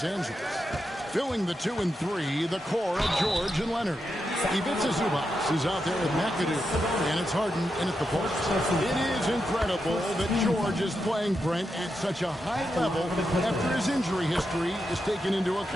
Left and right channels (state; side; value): normal; both; correlation 0.86